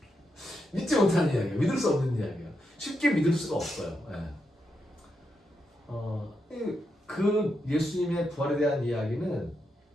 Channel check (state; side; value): normal; both; correlation 0.84